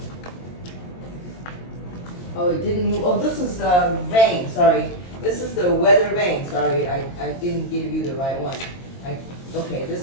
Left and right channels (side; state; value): right; late; 22 ms